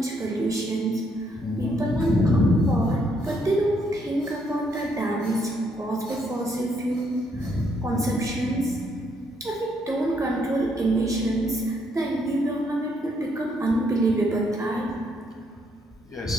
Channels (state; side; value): normal; both; correlation 0.72